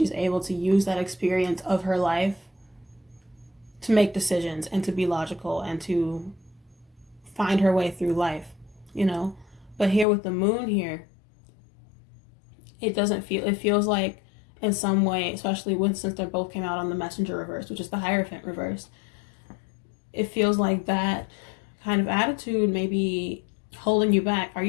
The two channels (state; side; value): drops out; right; at 10.1 s